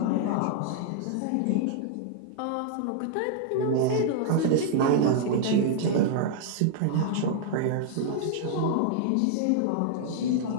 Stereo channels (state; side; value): different; both; correlation -0.01